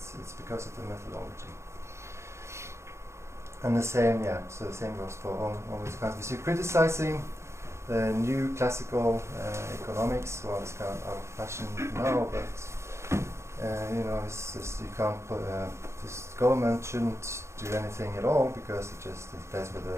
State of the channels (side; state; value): left; late; 0.13 ms